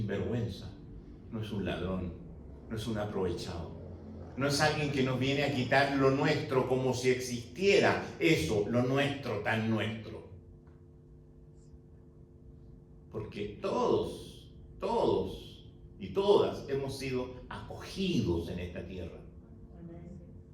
no es un ladrón, no es un aprovechado. No es alguien que nos viene a quitar lo nuestro como si existiera eso, lo nuestro, tan nuestro. Porque todos y todas hemos sido acogidos en esta tierra.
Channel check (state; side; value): identical; both; correlation 1.00